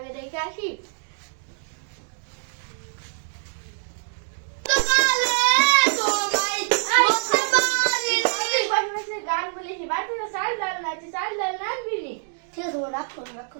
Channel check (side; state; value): left; silent; digital silence